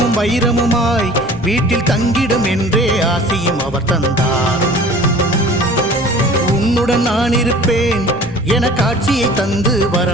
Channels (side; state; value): both; normal; correlation 0.45